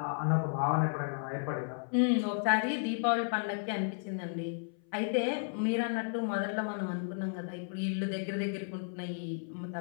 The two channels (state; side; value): silent; right; 55 dB below the other